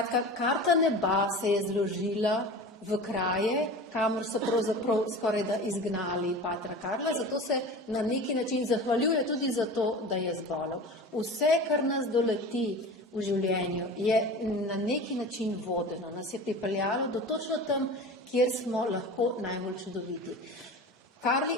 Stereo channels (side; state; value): both; normal; correlation 0.34